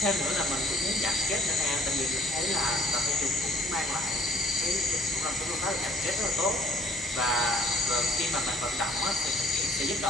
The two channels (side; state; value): both; normal; correlation 0.58